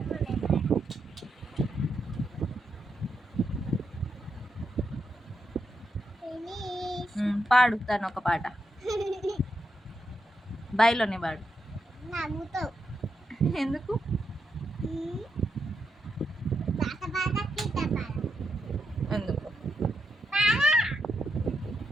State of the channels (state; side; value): normal; both; correlation 0.83